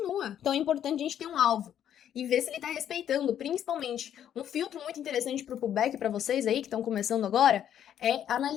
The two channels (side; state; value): right; quieter; 10.0 dB